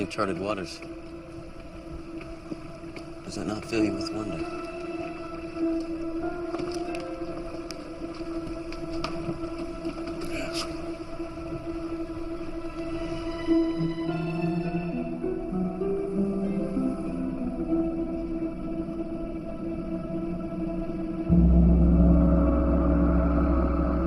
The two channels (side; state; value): both; identical; correlation 1.00